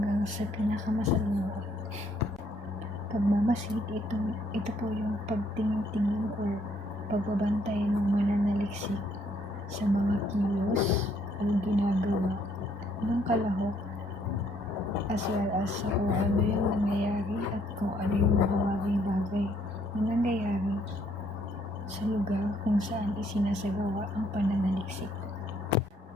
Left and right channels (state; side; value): normal; both; correlation 0.68